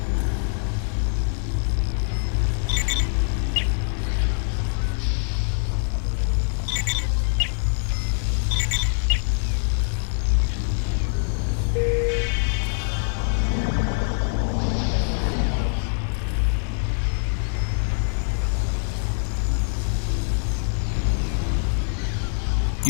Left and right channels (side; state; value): right; silent; 59 dB below the other